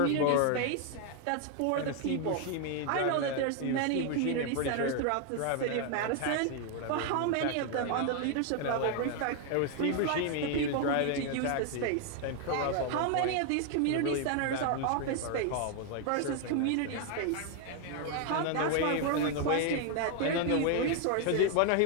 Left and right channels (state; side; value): different; both; correlation 0.01